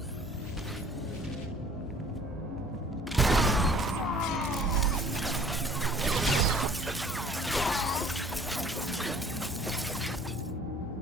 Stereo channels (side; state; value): both; normal; correlation 0.52